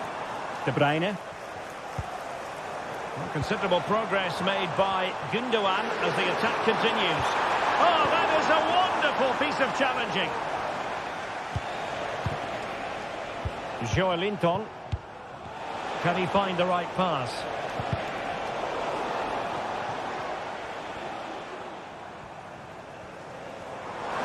De Bruyne. Well, considerable progress made by Gundogan as the attack continues. Oh, that is a wonderful piece of challenging. Joelinton. Can he find the right pass?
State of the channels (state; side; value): identical; both; correlation 1.00